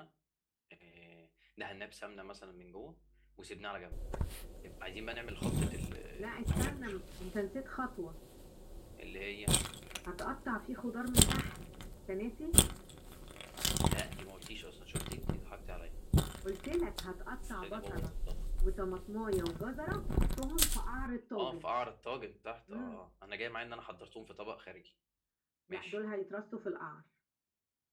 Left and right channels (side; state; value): both; identical; correlation 1.00